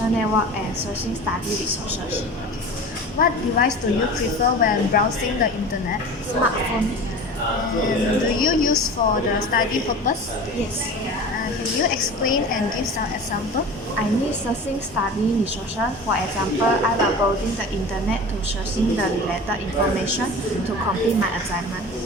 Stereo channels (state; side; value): normal; both; correlation 0.35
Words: network, and searching study resources. What device do you prefer when browsing the internet? Smartphone. And do you use for the study purpose? Yes. Can you explain and give some example? I need searching study resources. For example, I will browsing the internet to searching the related information to complete my assignment.